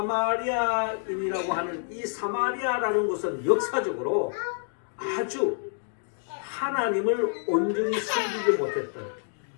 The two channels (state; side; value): silent; right; 60 dB below the other